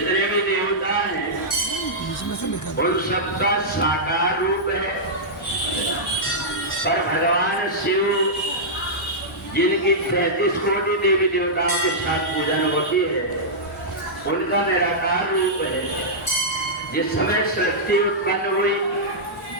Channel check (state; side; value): normal; both; correlation -0.11